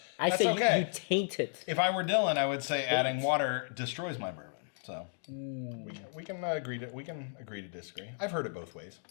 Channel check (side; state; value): right; silent; digital silence